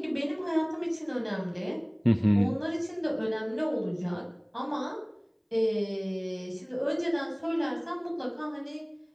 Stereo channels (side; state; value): both; identical; correlation 1.00